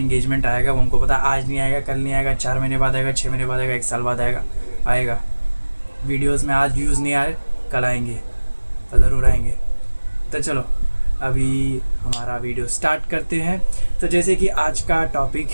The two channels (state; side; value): inverted; both; correlation -1.00